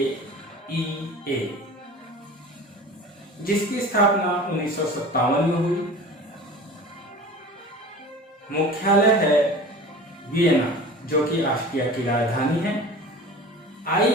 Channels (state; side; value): normal; both; correlation 0.38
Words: जिसकी स्थापना 1957 में हुई। मुख्यालय है वियना, जो कि ऑस्ट्रिया की राजधानी है।